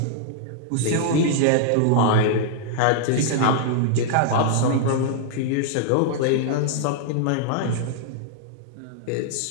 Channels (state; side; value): different; both; correlation -0.01